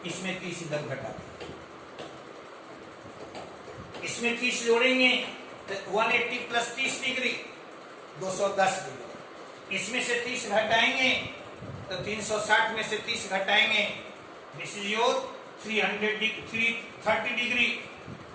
इसमें 30 इधर घटा दीजिए। इसमें 30 जोड़ेंगे तो 180 + 30 डिग्री 210 डिग्री। इसमें से 30 घटाएंगे तो 360 में से 30 घटाएंगे, दिस इज योर 330 डिग्री।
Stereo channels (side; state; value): both; identical; correlation 1.00